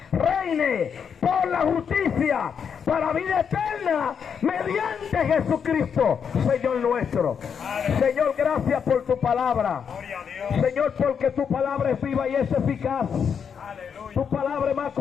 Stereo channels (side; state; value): right; quieter; 7.1 dB